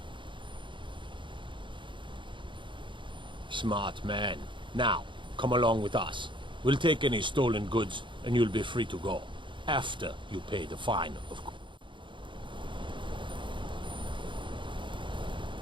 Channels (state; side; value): late; left; 0.24 ms